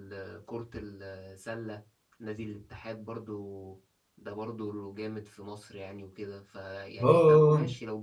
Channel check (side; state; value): both; identical; correlation 1.00